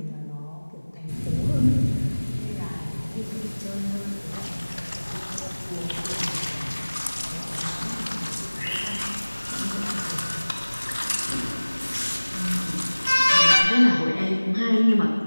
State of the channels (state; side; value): inverted; both; correlation -1.00